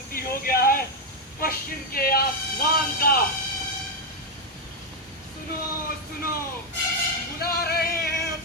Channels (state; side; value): normal; both; correlation 0.04